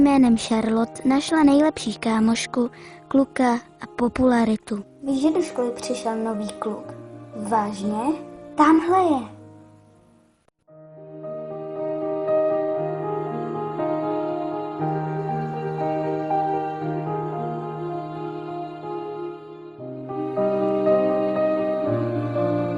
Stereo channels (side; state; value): both; identical; correlation 1.00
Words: Charlotte našla nejlepší kámošku, kluka a popularitu. Víš, že do školy přišel nový kluk? Vážně? Tamhle je.